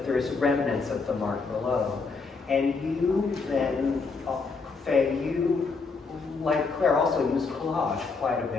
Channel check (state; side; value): quieter; right; 4.4 dB